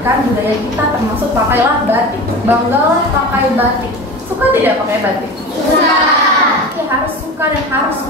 budaya kita, termasuk pakailah batik. Banggalah pakai batik. Suka tidak pakai batik? Suka. Ya, harus suka dan harus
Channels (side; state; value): both; normal; correlation 0.31